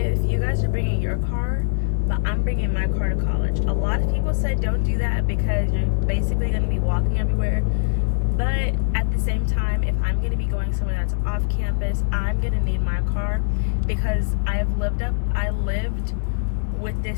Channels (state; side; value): silent; right; digital silence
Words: you guys are bringing your car, but I'm bringing my car to college. A lot of people say don't do that because you're basically going to be walking everywhere. But at the same time, if I'm going to be going somewhere that's off campus, I'm going to need my car, because I lived with